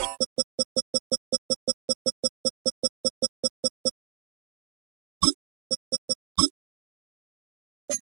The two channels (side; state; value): left; quieter; 31.1 dB